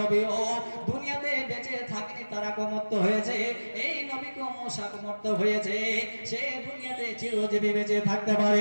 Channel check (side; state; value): both; inverted; correlation -1.00